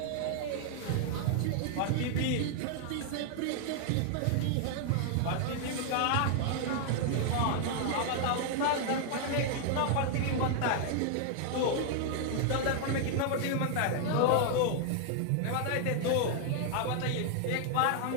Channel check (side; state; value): both; different; correlation 0.00